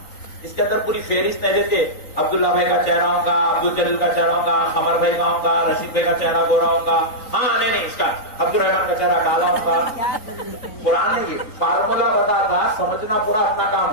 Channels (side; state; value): right; late; 3.9 ms